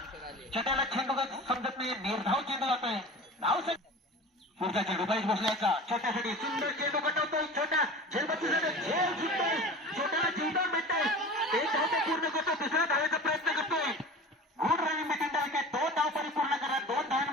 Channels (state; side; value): normal; both; correlation 0.36